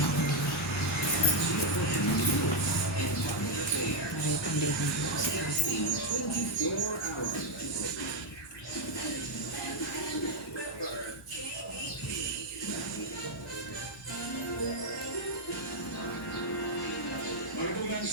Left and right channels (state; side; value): normal; both; correlation 0.02